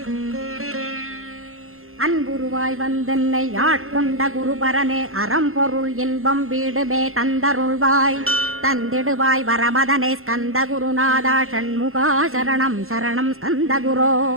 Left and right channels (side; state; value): left; late; 0.62 ms